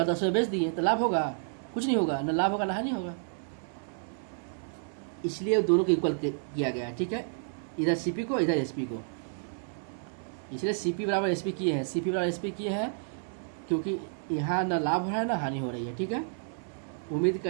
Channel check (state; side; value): silent; left; digital silence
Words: 10 में बेच दिए तो लाभ होगा? कुछ नहीं होगा, न लाभ होगा ना हानि होगा। इसलिए दोनों को इक्वल किया गया है, ठीक है, इधर CP को इधर SP को, इसलिए CP बराबर SP किए हैं, CP बराबर SP किए हैं क्योंकि यहाँ ना लाभ हो रहा है ना हानि हो रही है, ठीक है। उम्मीद